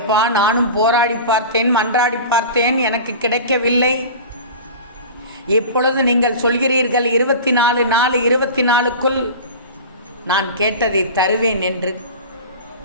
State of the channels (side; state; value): both; inverted; correlation -0.34